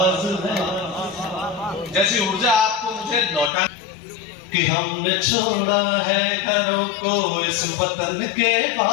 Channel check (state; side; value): drops out; right; at 3.5 s